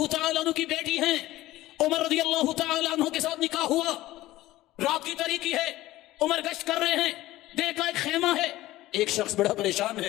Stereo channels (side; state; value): right; quieter; 16.4 dB